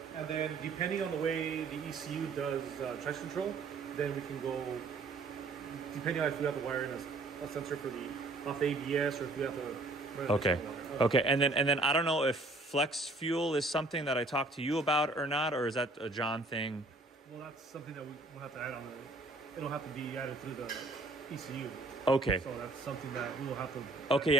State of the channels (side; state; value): left; quieter; 3.1 dB